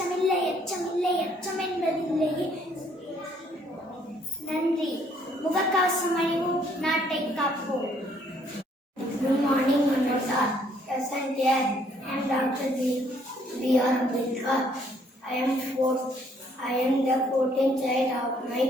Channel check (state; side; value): normal; both; correlation 0.65